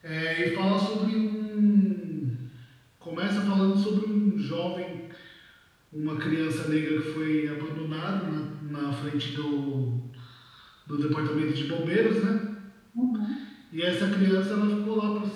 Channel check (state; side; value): identical; both; correlation 1.00